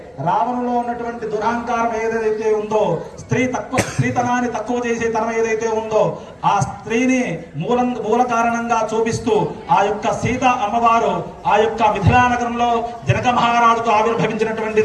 రావణులో ఉన్నటువంటి దురహంకారం ఏదైతే ఉందో, స్త్రీతనాన్ని తక్కువ చేసే తనం ఏదైతే ఉందో ఆ స్త్రీని మూల కారణంగా చూపిస్తూ ఆ యొక్క సీత అమ్మవారు ఆ యొక్క మిథిలా నగరంలో జనక మహారాజుకు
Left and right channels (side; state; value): both; identical; correlation 1.00